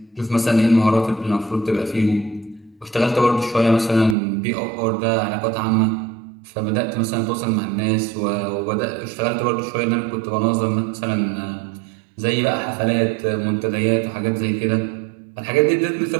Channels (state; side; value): drops out; left; at 4.2 s